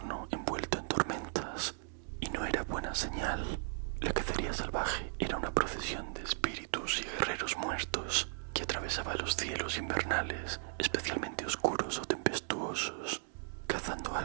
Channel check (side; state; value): left; silent; digital silence